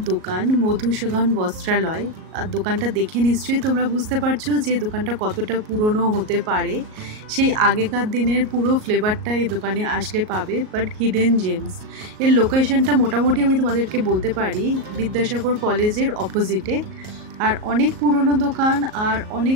দোকান, মধুসূদন বস্ত্রালয়। আর দোকানটা দেখে নিশ্চয়ই তোমরা বুঝতে পারছো যে দোকানটা কতটা পুরনো হতে পারে। সেই আগেকার দিনের পুরো ফ্লেভারটা এই দোকানে আসলে পাবে, বাট হিডেন জেমস। এর লোকেশনটা মোটামুটি আমি তোমাদেরকে বলতে পারি, বিদ্যাসাগর কলেজের অপোজিটে। আর অনেক পুরনো দোকান আর অনেক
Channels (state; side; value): late; left; 38 ms